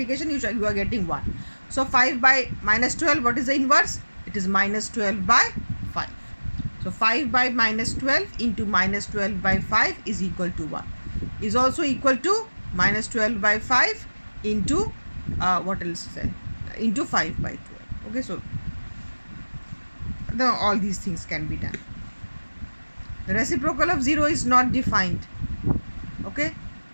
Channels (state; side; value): inverted; both; correlation -1.00